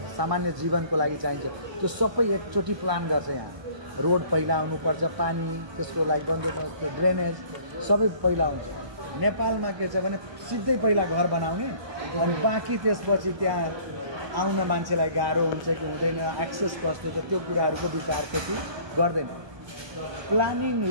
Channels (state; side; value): late; left; 1.2 ms